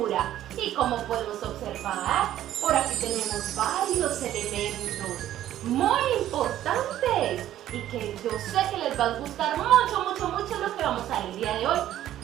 Y como podemos observar, por aquí tenemos varios elementos muy importantes y que yo sé que les va a gustar mucho lo que vamos a ver el día de hoy,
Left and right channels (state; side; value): quieter; left; 12.5 dB